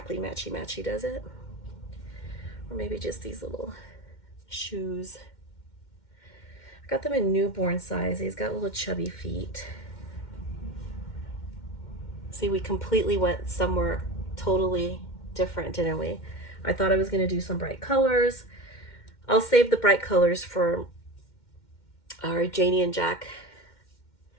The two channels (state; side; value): late; right; 2.1 ms